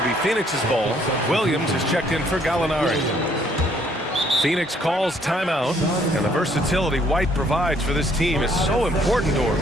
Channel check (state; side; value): normal; both; correlation 0.65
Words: be Phoenix's ball. Williams is checked in for Gallinari. Phoenix calls timeout, and the versatility White provides for this team is so important, Doris.